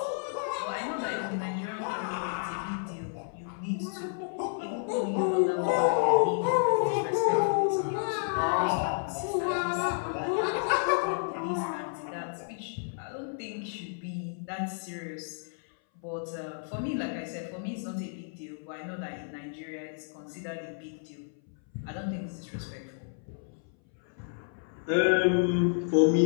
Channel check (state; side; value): silent; right; 57 dB below the other